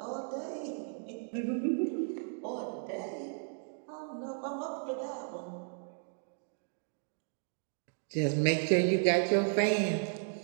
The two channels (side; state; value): left; silent; 55 dB below the other